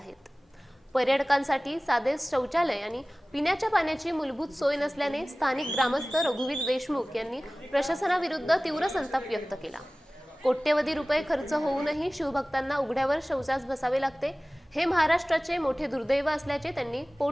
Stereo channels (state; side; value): normal; both; correlation 0.98